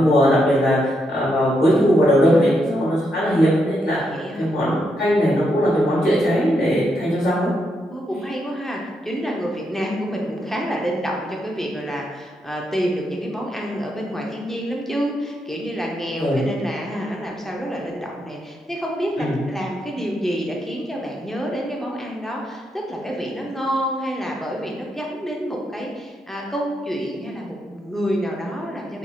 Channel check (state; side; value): normal; both; correlation 0.80